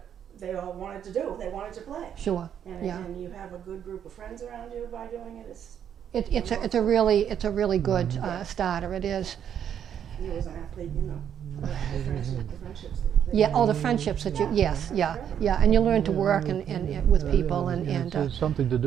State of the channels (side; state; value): left; quieter; 9.0 dB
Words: they all wanted to do. They wanted to play. Sure. And, Yeah. and you have a good group of friends around you by doing it. It's a really good starter. It is. You as an athlete, the friendships. Yeah. All the friendships that you. Yes. Yeah. Yeah. And you learn to work and with people and It's something to